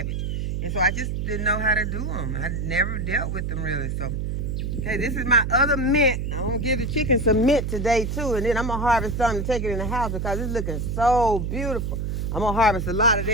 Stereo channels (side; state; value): right; noise; hum, 2 dB below the sound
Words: And so I just didn't know how to do them. I never dealt with them really. So, okay, this is my other mint. I'm going to give the chicken some mint today too. And then I'm going to harvest some to take it in the house, because it's looking so beautiful. I'm going to harvest a lot of